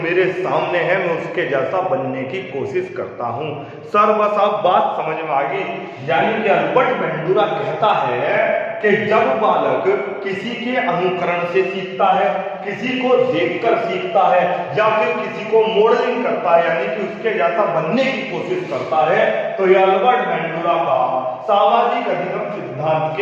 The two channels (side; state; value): both; identical; correlation 1.00